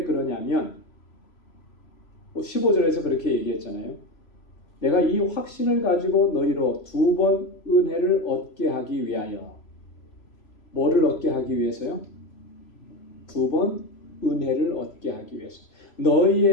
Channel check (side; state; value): right; late; 3.0 ms